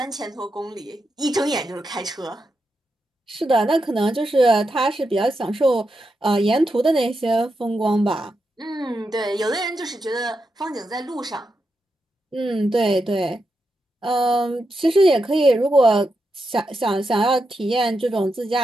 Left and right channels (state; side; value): normal; both; correlation 0.86